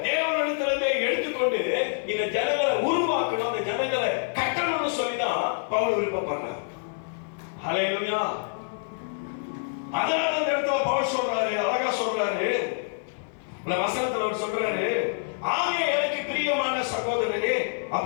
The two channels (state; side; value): silent; right; 60 dB below the other